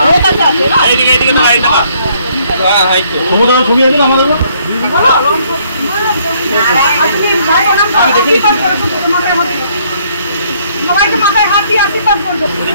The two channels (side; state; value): both; inverted; correlation -0.66